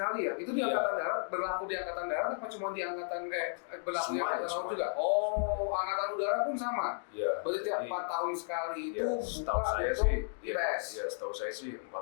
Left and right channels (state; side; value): silent; right; digital silence